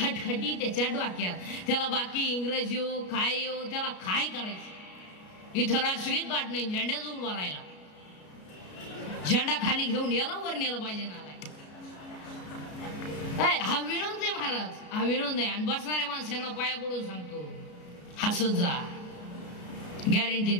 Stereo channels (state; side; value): late; right; 33 ms